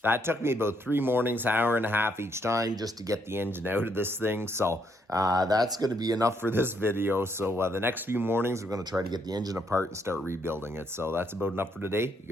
That took me about 3 mornings, hour and a half each time just to get the engine out of this thing. So that's going to be enough for this video. So the next few mornings, we're going to try to get the engine apart and start rebuilding it. So that's about enough for today. You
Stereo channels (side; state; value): both; normal; correlation 0.73